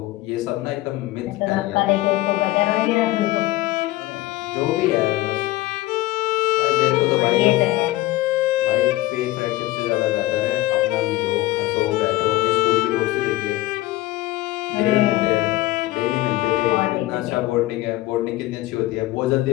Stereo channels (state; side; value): quieter; right; 17.3 dB